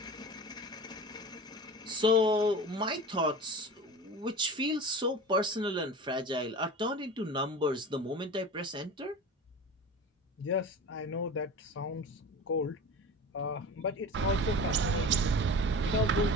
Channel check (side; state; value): both; normal; correlation 0.33